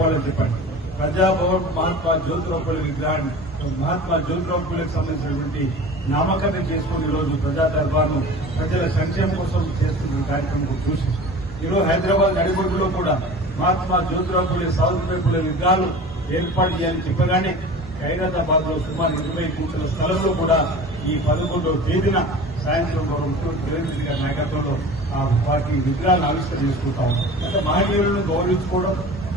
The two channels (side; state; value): both; normal; correlation 0.38